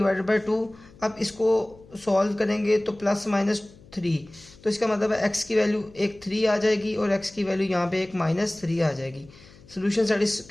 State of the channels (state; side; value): noise; left; hum, 24 dB below the sound